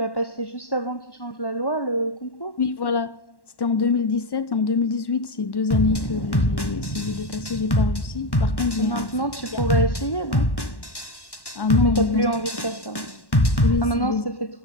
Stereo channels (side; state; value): right; late; 1.1 ms